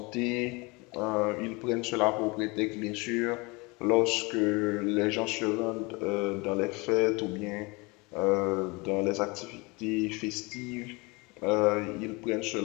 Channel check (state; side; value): quieter; right; 26.5 dB